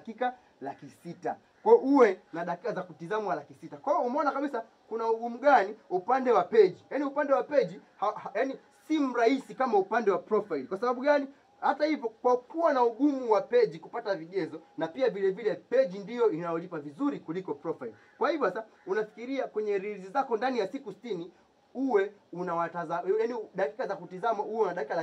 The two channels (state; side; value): identical; both; correlation 1.00